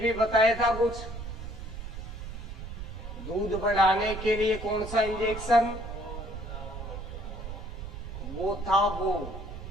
बताया था कुछ, दूध बढ़ाने के लिए कौन सा इंजेक्शन, वो था, वो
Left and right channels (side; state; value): right; noise; rumble, 8 dB below the sound